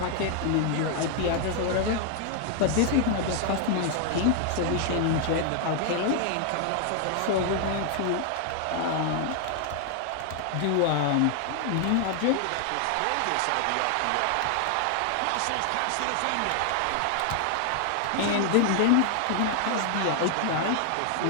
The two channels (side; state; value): both; different; correlation 0.00